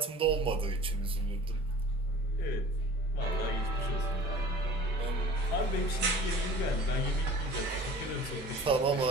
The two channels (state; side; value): normal; both; correlation 0.44